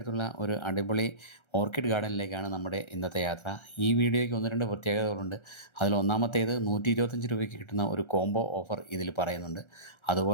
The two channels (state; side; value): late; right; 1.3 ms